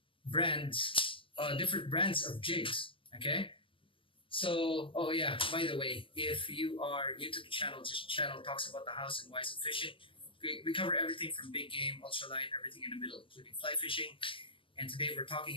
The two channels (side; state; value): right; late; 0.25 ms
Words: brands, different brands of jigs, okay? So, oh yeah, by the way, if you are new to the channel, this channel talks about the hows and whys of fishing. We cover everything from big game, ultralight, everything in the middle, including fly fishing. And today we're talking